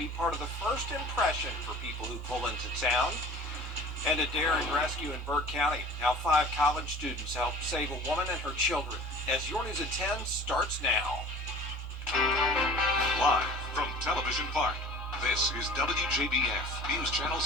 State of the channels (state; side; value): normal; both; correlation 0.44